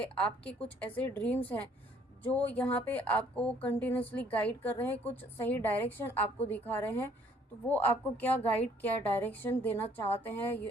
आपके कुछ ऐसे ड्रीम्स हैं जो यहाँ पे आपको कंटिन्यूसली गाइड कर रहे हैं, कुछ सही डायरेक्शन आपको दिखा रहे हैं। तो वो आपको क्या गाइड, क्या डायरेक्शन देना चाहते हैं,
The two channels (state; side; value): normal; both; correlation 0.61